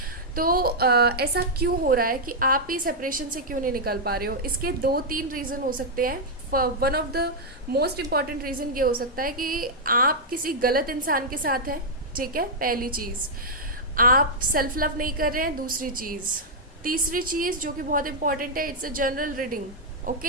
तो ऐसा क्यों हो रहा है कि आप ही सेपरेशन से क्यों नहीं निकल पा रहे हो? इसके 2-3 रीज़न हो सकते हैं। One of the most important reason ये हो सकता है कि आप किसी गलत इंसान के साथ हैं, ठीक है, पहली चीज़। आप सेल्फ लव नहीं कर रहे हैं, दूसरी चीज़। तीसरी चीज़ जो कि बहुत इंपॉर्टेंट है, it's a general reading,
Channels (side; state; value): both; normal; correlation -0.06